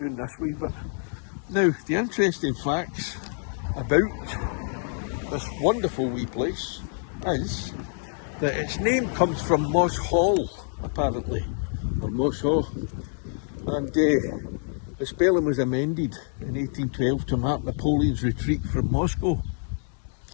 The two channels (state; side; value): silent; right; 60 dB below the other